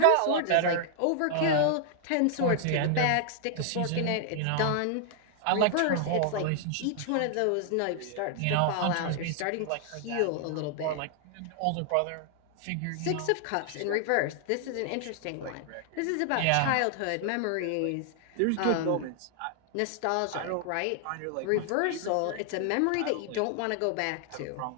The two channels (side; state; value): both; different; correlation 0.00